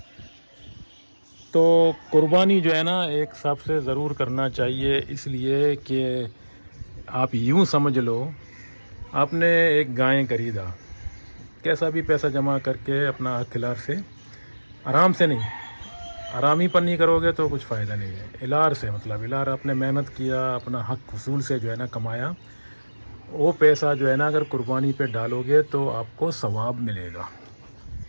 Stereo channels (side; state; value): both; inverted; correlation -1.00